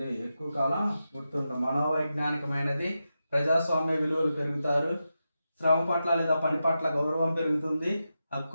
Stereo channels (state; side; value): inverted; both; correlation -0.90